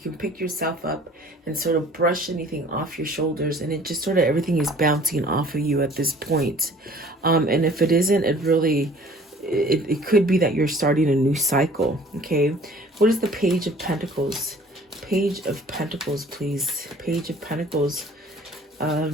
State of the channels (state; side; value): normal; both; correlation 0.51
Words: pick yourself up and sort of brush anything off your shoulders. And it just sort of everything is bouncing off of you at this point. And if it isn't, it could be that you're starting a new cycle. Okay. What is the Page of Pentacles? Page of Pentacles, please. Page of Pentacles.